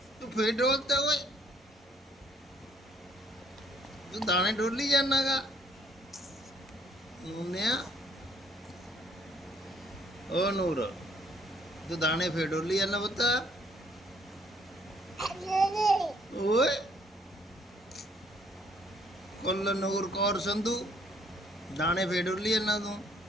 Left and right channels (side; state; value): both; normal; correlation 0.65